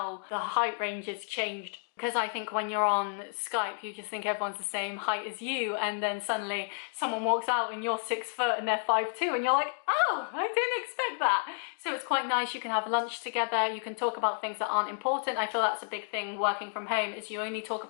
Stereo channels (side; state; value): right; silent; digital silence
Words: the height ranges changed, because I think when you're on Skype, you just think everyone's the same height as you, and then suddenly someone walks out and you're 6 foot and they're 5'2", and you're like, oh, I didn't expect that. So it's quite nice. You can have lunch together, you can talk about things that aren't important. I feel that's a big thing working from home, is you only talk